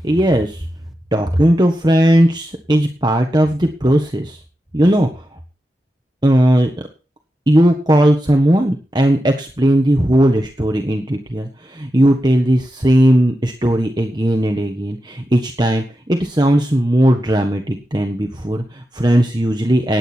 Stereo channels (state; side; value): normal; both; correlation 0.89